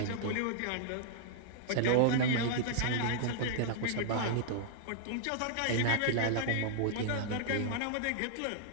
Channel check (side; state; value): both; different; correlation -0.01